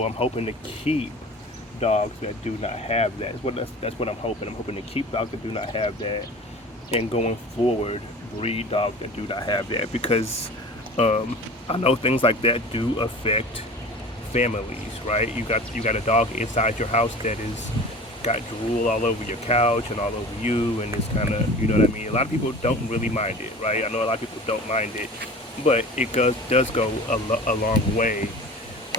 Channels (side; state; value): both; normal; correlation 0.39